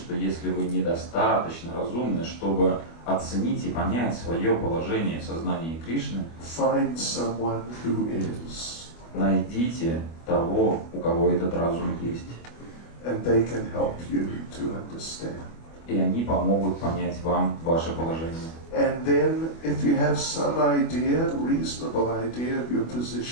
если вы недостаточно разумны, чтобы оценить и понять свое положение в сознании Кришны, find someone who is, найдите того, у кого этот разум есть. and they can help you to understand. И они помогут понять вам ваше положение. And then, if you have some idea, reasonable idea of your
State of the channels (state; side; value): late; right; 25 ms